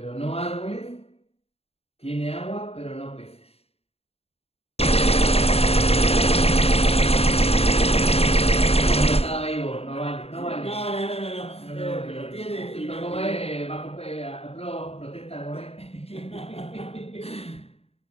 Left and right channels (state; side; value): late; right; 0.29 ms